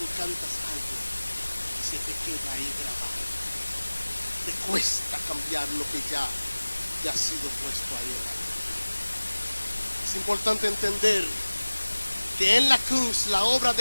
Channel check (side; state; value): both; inverted; correlation -1.00